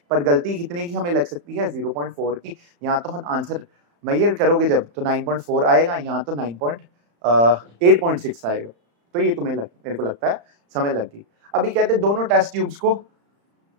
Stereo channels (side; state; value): left; late; 35 ms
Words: पर गलती कितने की हमें लग सकती है 0.4 की। यहाँ तो हम आंसर मेजर करोगे जब तो 9.4 आएगा, यहाँ तो 8.6 आएगा। तो ये तुम्हें मेरे को लगता है समझ लग गई। अभी कहते हैं दोनों टेस्ट ट्यूब्स को